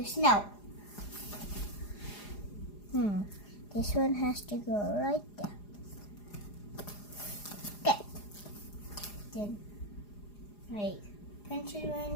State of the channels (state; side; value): late; right; 4.9 ms